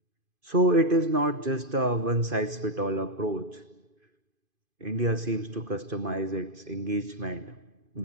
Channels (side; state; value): left; late; 2.5 ms